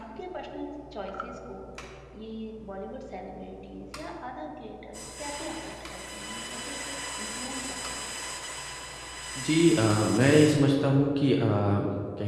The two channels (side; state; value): both; identical; correlation 1.00